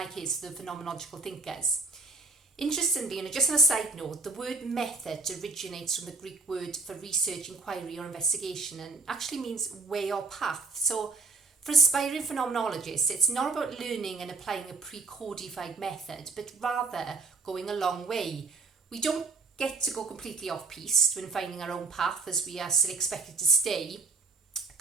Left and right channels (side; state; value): left; quieter; 3.9 dB